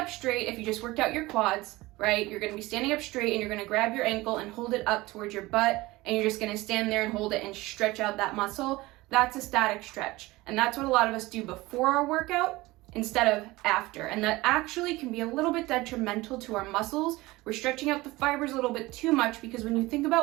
straight. If you just worked out your quads, right? You're gonna be standing up straight and you're gonna grab your ankle and hold it up towards your butt, and you're just gonna stand there and hold it and stretch out that muscle. That's a static stretch. And that's what a lot of us do before our workout instead of after. And that actually can be a little bit detrimental to our muscles. We're stretching out the fibers a little bit too much, because when you think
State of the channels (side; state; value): left; quieter; 20.1 dB